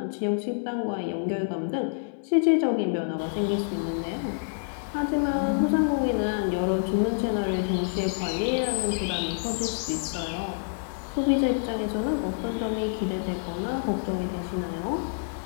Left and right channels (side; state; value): right; silent; 60 dB below the other